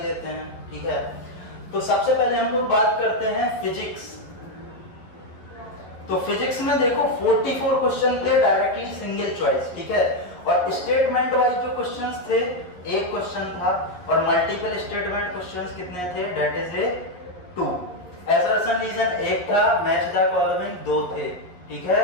लेते हैं। ठीक है, तो सबसे पहले हम लोग बात करते हैं फिजिक्स। तो फिजिक्स में देखो 44 क्वेश्चन थे डायरेक्टली सिंगल चॉइस। ठीक है, और स्टेटमेंट वाइज जो क्वेश्चंस थे, एक क्वेश्चन था और मल्टीपल स्टेटमेंट क्वेश्चंस कितने थे, that is a 2। Assertion reason एक था, मैच द फॉलोइंग 2 थे। ठीक है,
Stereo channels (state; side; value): late; right; 11 ms